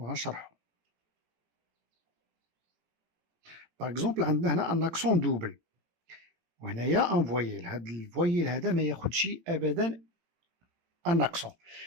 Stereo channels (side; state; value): left; late; 18 ms